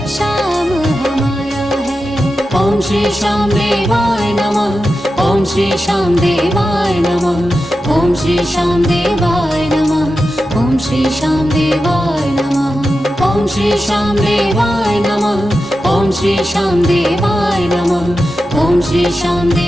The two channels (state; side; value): normal; both; correlation 0.91